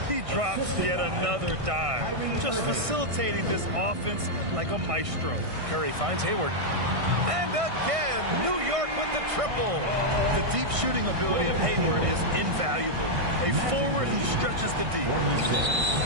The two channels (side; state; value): left; late; 1.6 ms